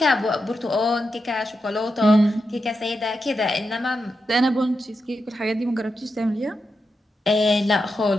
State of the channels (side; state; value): both; normal; correlation 0.87